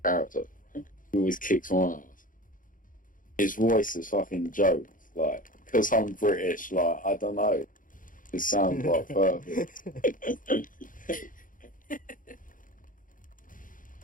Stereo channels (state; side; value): late; right; 0.39 ms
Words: character, he always kicks my ass. His voice is fucking joke, like because I'm British, like I don't know, it sounds like perfect.